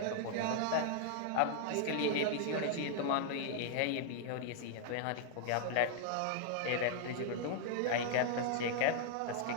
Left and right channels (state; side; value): different; both; correlation -0.01